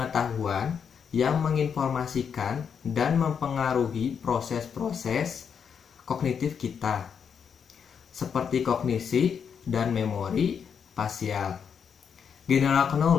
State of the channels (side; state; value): right; quieter; 7.1 dB